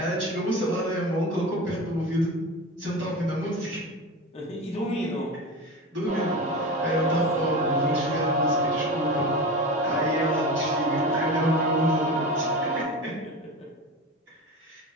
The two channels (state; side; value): normal; both; correlation 0.27